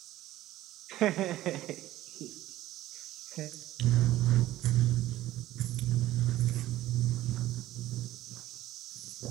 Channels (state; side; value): quieter; left; 15.1 dB